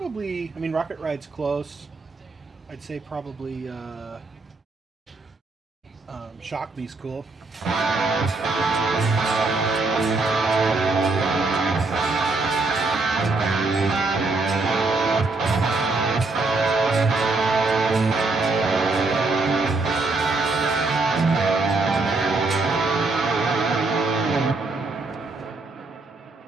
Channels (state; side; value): quieter; left; 3.5 dB